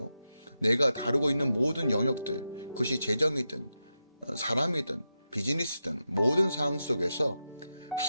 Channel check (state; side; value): inverted; both; correlation -0.88